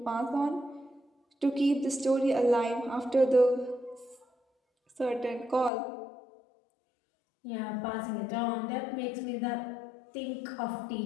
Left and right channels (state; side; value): drops out; right; at 5.7 s